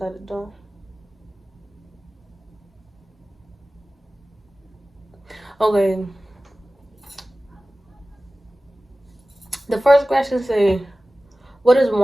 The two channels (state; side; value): normal; both; correlation 0.96